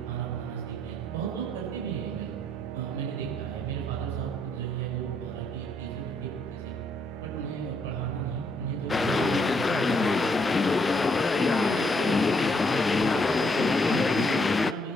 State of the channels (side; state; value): both; normal; correlation 0.72